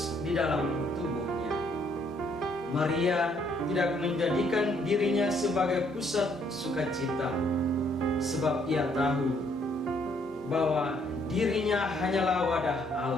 di dalam tubuhnya. Maria tidak menjadikan dirinya sebagai pusat sukacita, sebab ia tahu bahwa dirinya hanyalah wadah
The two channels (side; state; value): both; normal; correlation 0.68